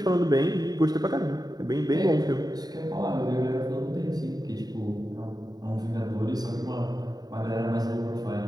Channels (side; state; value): left; late; 0.19 ms